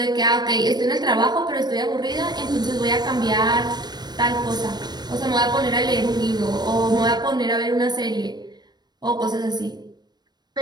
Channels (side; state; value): left; late; 0.20 ms